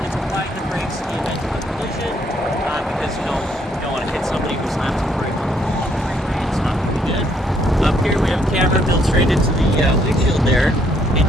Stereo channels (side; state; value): both; normal; correlation 0.69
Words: it's applying the brakes in the event of a collision, because you don't want to hit somebody who slams the brake on the wall. It's not going to be good. Up here we have a camera built straight into the windshield there. It